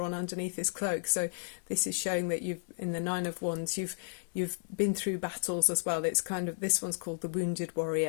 on underneath his cloak. So this is showing that in the Nine of Wands, you've been through battles as well. It's kind of, this one's called the Wounded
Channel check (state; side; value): silent; right; digital silence